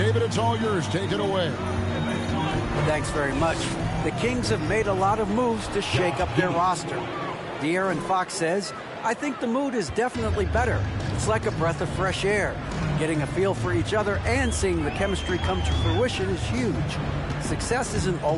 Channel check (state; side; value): identical; both; correlation 1.00